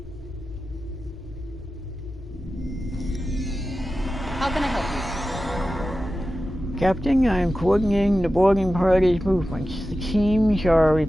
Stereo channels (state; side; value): normal; both; correlation 0.94